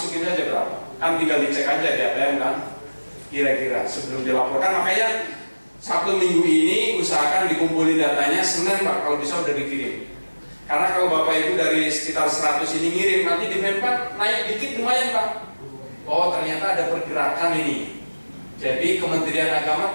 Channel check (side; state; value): both; inverted; correlation -1.00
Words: aja berapa? Kan tinggal dicek aja di ATM kan. Kira-kira sebelum dilaporkan. Makanya Sabtu minggu ini usahakan dikumpulin datanya, Senin Pak kalau bisa udah dikirim. Karena kalau Bapak Ibu dari sekitar 100 ini ngirim, nanti di Menpan naik dikit lumayan Pak. Oh ternyata ada pergerakan ini. Jadi Kementerian Agama